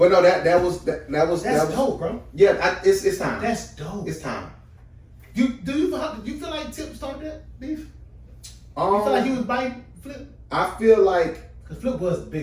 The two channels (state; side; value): identical; both; correlation 1.00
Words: no, that was dope, bro. Yeah, it's time. That's dope. It's time. You feel like Tip started that beef? You feel like he was biting Flip? I feel like because Flip was